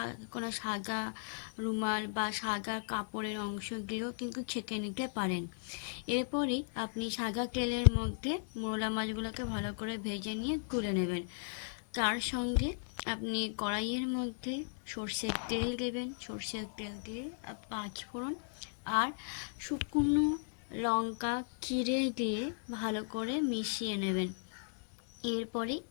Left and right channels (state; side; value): silent; right; digital silence